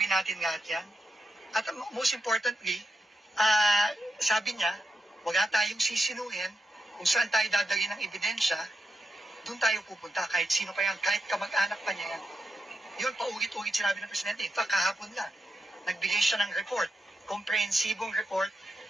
natin lahat yan. At most importantly, sabi niya, wala tayong sisinuhin kung saan tayo dadali ng ebidensya, doon tayo pupunta, kahit sino pa yan, kahit kamag-anak pa niya yan. Yun, paulit-ulit sinabi ng Presidente. In fact, kahapon lang, nagbigay siya ng report, komprehensibong report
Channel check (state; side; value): normal; both; correlation 0.87